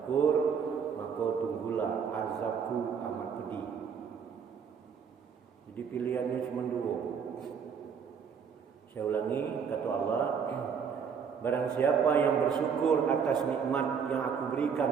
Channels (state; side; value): quieter; left; 6.8 dB